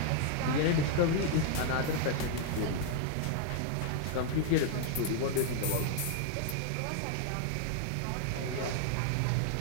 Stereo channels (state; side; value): different; both; correlation 0.00